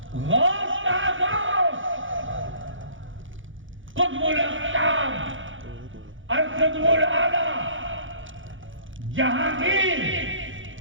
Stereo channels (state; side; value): late; left; 0.57 ms